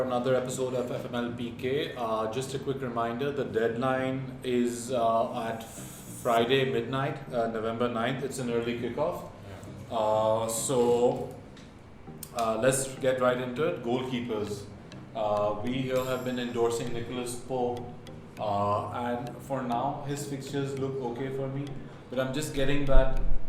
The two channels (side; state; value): both; identical; correlation 1.00